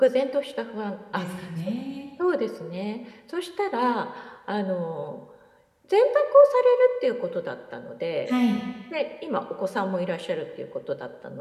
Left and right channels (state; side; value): identical; both; correlation 1.00